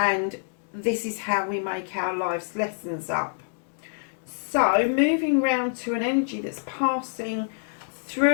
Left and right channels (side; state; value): right; silent; digital silence